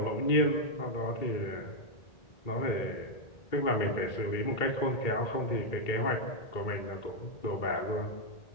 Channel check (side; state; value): right; late; 2.2 ms